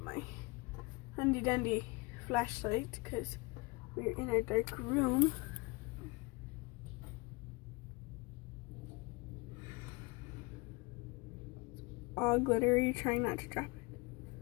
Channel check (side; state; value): right; quieter; 25.8 dB